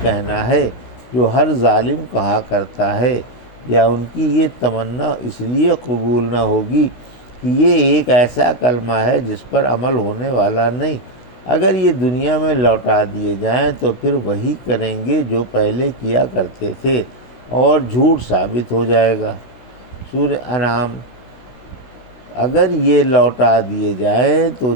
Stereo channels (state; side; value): late; right; 16 ms